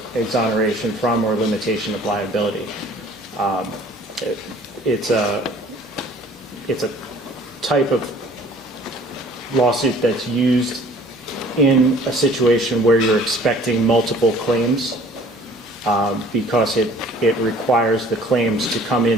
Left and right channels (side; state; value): both; normal; correlation 0.52